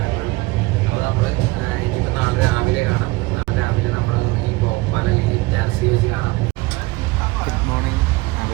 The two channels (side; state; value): left; quieter; 22.0 dB